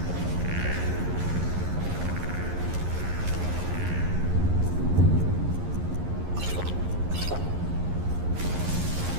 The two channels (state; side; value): late; left; 11 ms